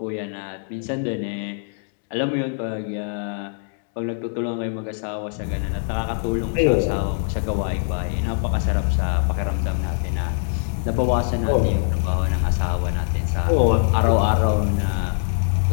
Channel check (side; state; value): right; silent; 57 dB below the other